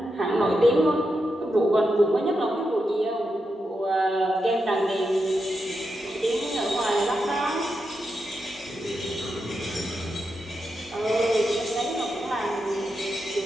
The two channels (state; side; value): normal; both; correlation 0.86